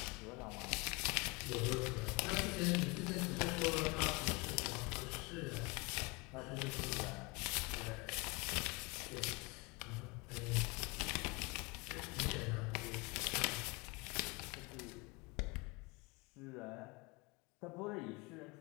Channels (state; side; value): quieter; right; 27.4 dB